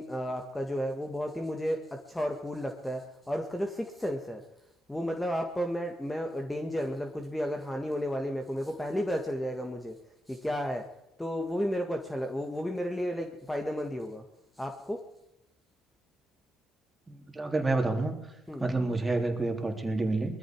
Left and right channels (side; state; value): both; normal; correlation 0.89